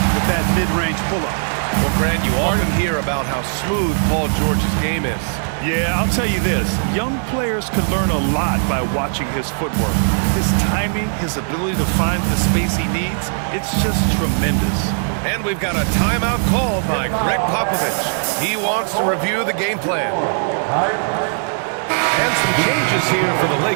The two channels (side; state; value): left; silent; 67 dB below the other